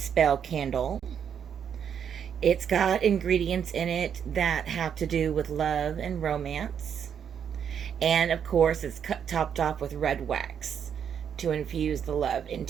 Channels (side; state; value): left; quieter; 8.0 dB